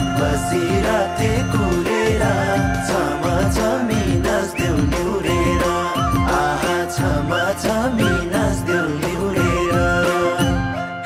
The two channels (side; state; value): both; identical; correlation 1.00